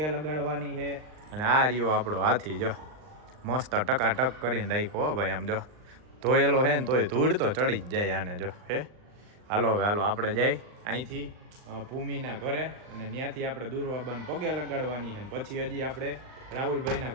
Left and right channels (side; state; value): left; late; 39 ms